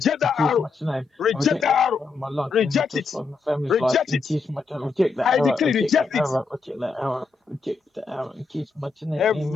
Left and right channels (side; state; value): right; quieter; 4.5 dB